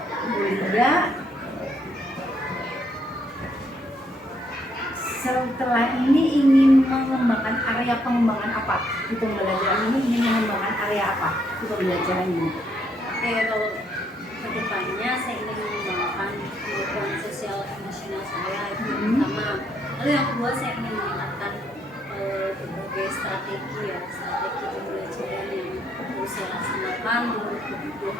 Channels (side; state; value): both; normal; correlation 0.72